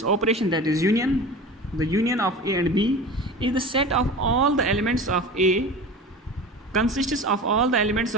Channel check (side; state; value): both; normal; correlation 0.34